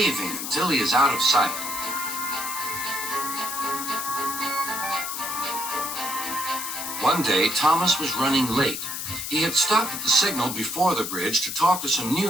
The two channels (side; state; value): left; noise; hiss, 5 dB below the sound